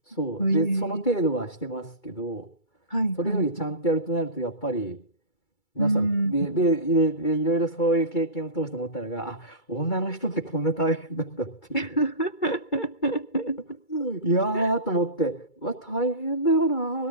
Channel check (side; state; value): right; late; 2.3 ms